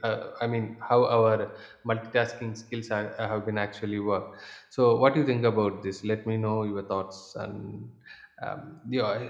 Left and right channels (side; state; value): both; identical; correlation 1.00